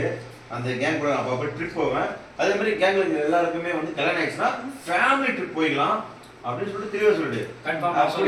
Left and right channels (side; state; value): both; identical; correlation 1.00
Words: அந்த கேங் கூட அப்போ ட்ரிப் போவேன். அதே மாதிரி கேங்ல எல்லாருக்குமே வந்து கல்யாணம் ஆயிடுச்சுன்னா ஃபேமிலி ட்ரிப் போயிடலாம் அப்படின்னு சொல்லிட்டு தெளிவா சொல்லிட்டு